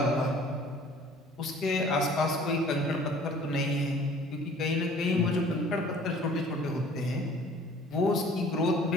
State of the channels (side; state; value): both; normal; correlation 0.52